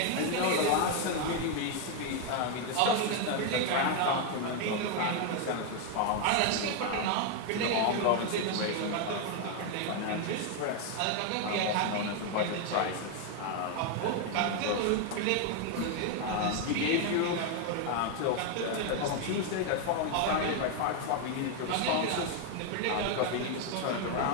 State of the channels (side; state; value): both; different; correlation 0.01